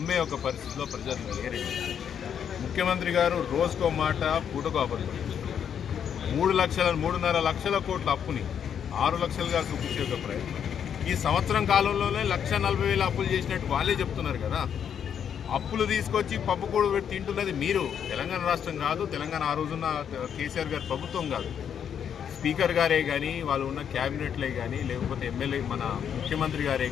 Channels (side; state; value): right; quieter; 8.3 dB